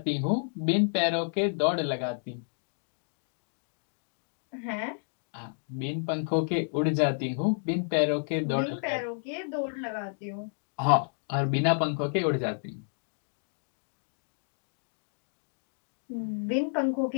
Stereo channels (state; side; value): silent; right; digital silence